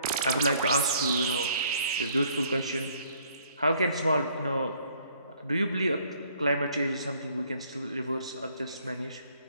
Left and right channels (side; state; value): both; inverted; correlation -0.62